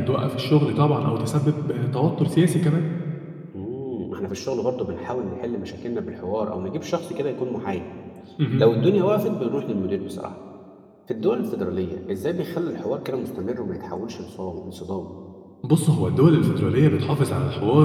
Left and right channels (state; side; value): identical; both; correlation 1.00